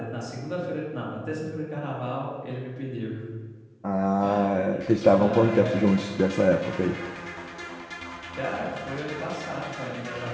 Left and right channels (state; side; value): identical; both; correlation 1.00